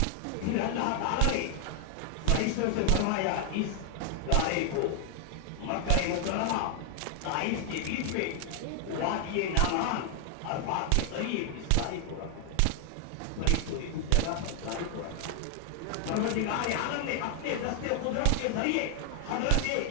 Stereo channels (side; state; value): both; different; correlation 0.00